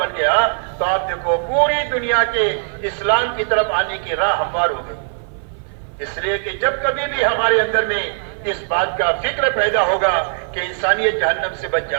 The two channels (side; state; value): left; silent; 56 dB below the other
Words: گیا تو آپ دیکھو پوری دنیا کے اسلام کی طرف آنے کی راہ ہموار ہو گئی. اس لیے کہ جب کبھی بھی ہمارے اندر میں اس بات کا فکر پیدا ہوگا کہ انسانیت جہنم سے بچ